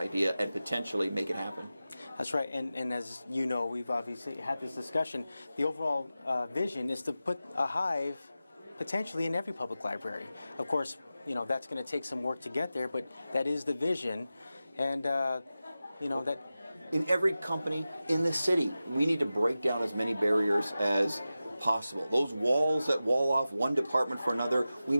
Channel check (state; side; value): inverted; both; correlation -0.94